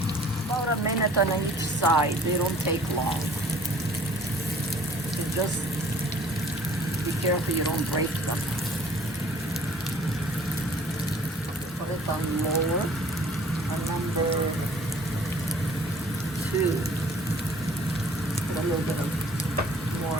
About a minute on each side. They don't take long. So just be careful you don't break them. Put it on lower, on number 2. Put a little bit of more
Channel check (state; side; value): normal; both; correlation 0.54